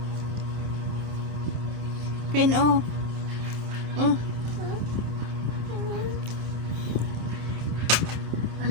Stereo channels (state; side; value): late; left; 26 ms